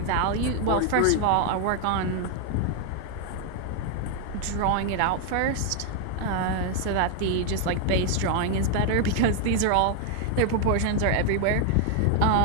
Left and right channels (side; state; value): both; different; correlation 0.00